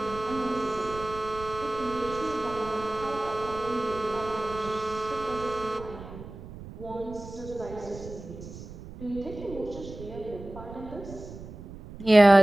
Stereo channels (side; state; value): right; noise; rumble, 14 dB below the sound